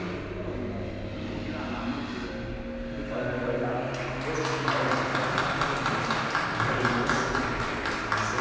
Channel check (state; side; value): identical; both; correlation 1.00